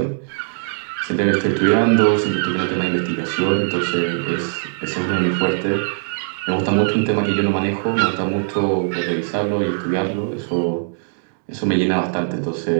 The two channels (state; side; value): silent; left; 66 dB below the other